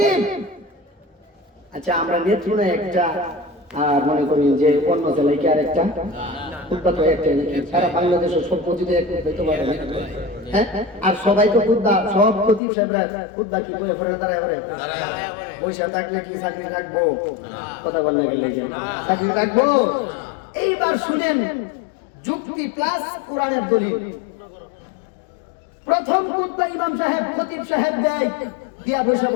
আচ্ছা আমরা নেত্রকোনা একটা আর মনে করি যে অন্য জেলায় কি আর একটা খুতবা তো একটা নাকি সারা বাংলাদেশের সব মসজিদে এক হইতে পারে না। হ্যাঁ আর সবাই তো খুতবা সব খতিব সাহেবরা খুতবা কি করে ফেরে দাঁড়ায় করে পয়সা থাকলে কি চাকরি রাখবো কথা বললে গেলে চাকরি রাখবো। এইবার শুনেন যুক্তি প্লাস কোরআনের দলিল। প্রথম খুতবা ইমাম সাহেব খতিব সাহেব দেয় দিয়া বৈশা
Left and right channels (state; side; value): drops out; right; at 12.6 s